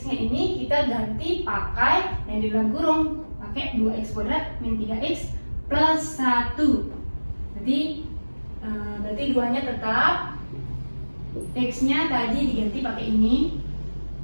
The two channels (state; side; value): inverted; both; correlation -1.00